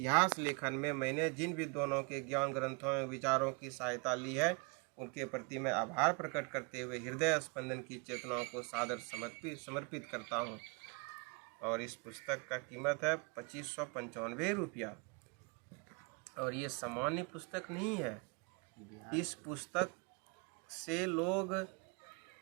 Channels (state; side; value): quieter; left; 32.4 dB